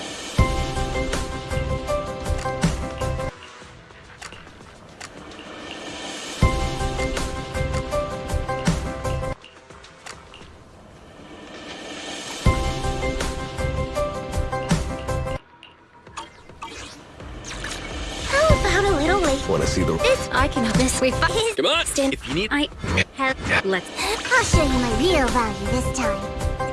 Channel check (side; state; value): both; identical; correlation 1.00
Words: A little late. Want to see the... This I can help this. We Come on! stand. If you need... I have. Let's. I'll show you my real value this time.